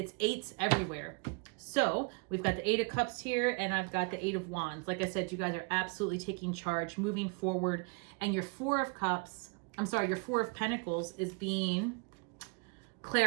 eights everywhere. So we've got the Eight of Cups here, and I've got the Eight of Wands. Like I said, you guys are absolutely taking charge, moving forward. And your Four of Pentacles is being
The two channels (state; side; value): quieter; left; 33.8 dB